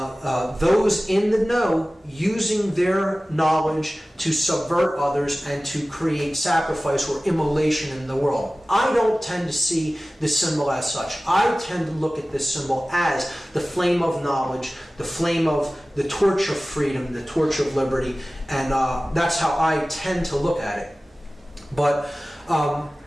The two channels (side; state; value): both; normal; correlation 0.97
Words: those in the know using their knowledge to subvert others and to create sacrifice or immolation in the world. I don't tend to see this symbol as such. I tend to look at this symbol as the flame of knowledge, the flame of the torch of freedom, the torch of liberty, and that's how I tend to look at it. But